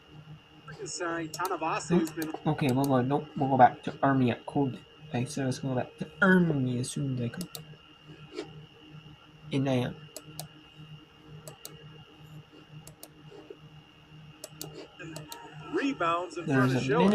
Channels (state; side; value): identical; both; correlation 1.00